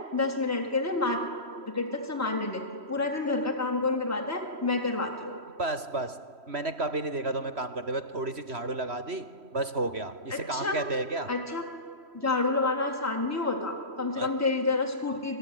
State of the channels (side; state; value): left; late; 3.1 ms